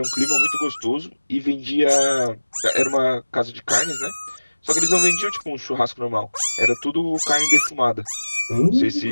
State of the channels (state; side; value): inverted; both; correlation -1.00